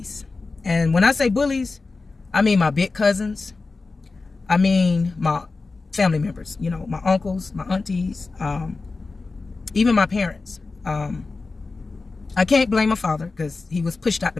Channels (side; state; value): right; quieter; 3.8 dB